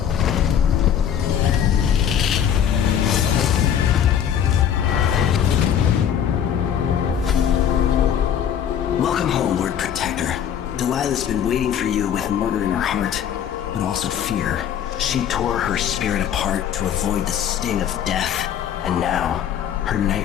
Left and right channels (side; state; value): right; quieter; 9.1 dB